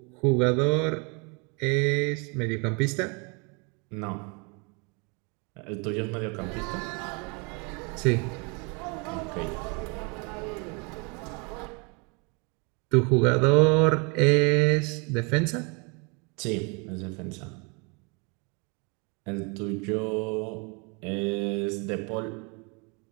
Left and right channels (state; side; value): quieter; left; 32.1 dB